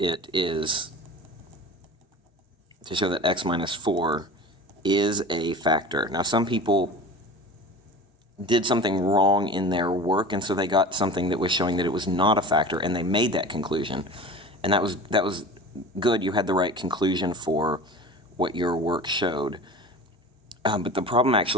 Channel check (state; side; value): normal; both; correlation 0.36